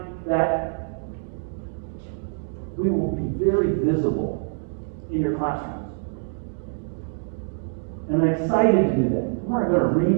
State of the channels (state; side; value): silent; left; digital silence